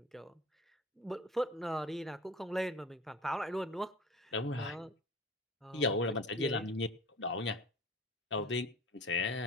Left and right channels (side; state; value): both; normal; correlation 0.38